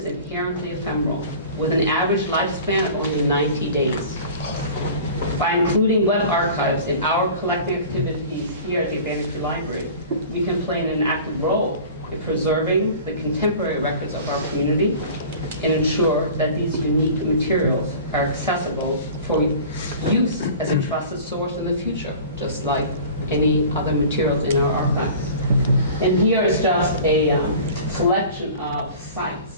inherently ephemeral, with an average lifespan of only 90 days. By including web archives in our collecting activities here at the Urbana Free Library, we can play an active role in preserving the contemporary records of our community and ensure that these unique materials are accessible for use as a trusted source in the future, just like any other materials in our archives. And here is just a selection of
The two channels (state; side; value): inverted; both; correlation -0.41